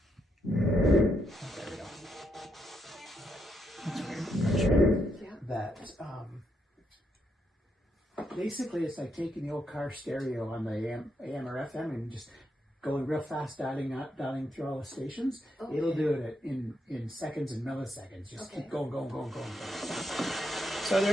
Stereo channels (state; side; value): normal; both; correlation 0.79